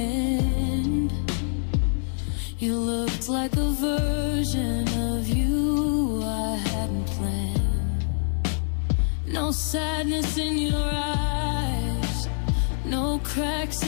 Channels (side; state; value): right; silent; 60 dB below the other